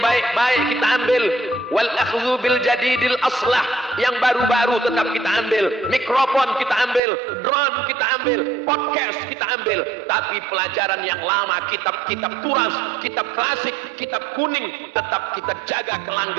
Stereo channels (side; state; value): left; drops out; at 7.0 s